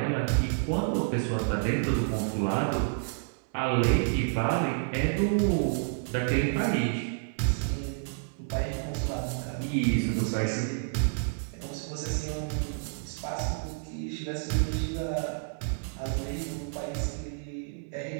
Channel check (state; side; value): silent; left; 58 dB below the other